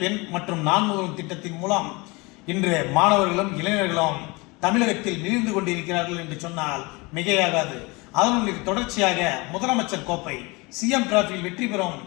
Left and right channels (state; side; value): quieter; right; 25.6 dB